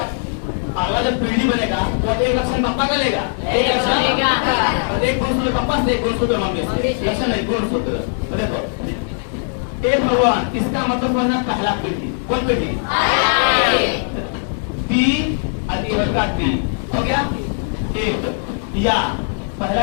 अगला जब पीढ़ी बनेगा वो एक लक्षण पापा का लेगा, एक लक्षण एक गुणसूत्र पापा से, एक गुणसूत्र मम्मी से, लक्षण नहीं गुणसूत्र। तो देखो ए भगवान, इसका मतलब होना पहला पीढ़ी। कौन पीढ़ी? टी का टी हो गया एक, या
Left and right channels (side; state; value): right; silent; 66 dB below the other